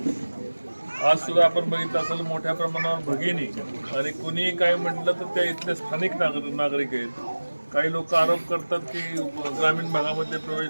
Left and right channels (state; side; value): inverted; both; correlation -1.00